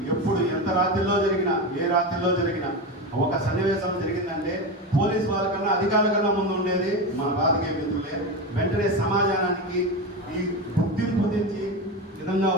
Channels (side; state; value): both; normal; correlation 0.19